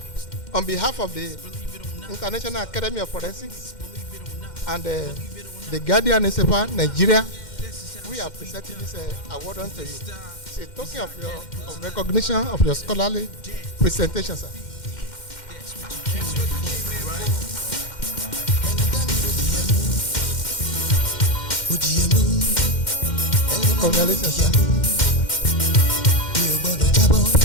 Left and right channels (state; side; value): late; right; 2.1 ms